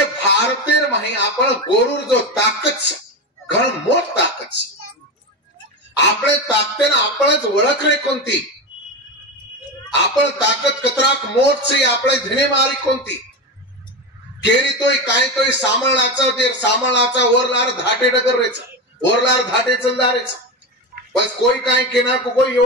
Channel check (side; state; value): both; normal; correlation 0.18